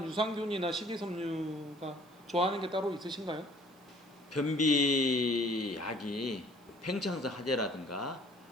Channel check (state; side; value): noise; right; hiss, 30 dB below the sound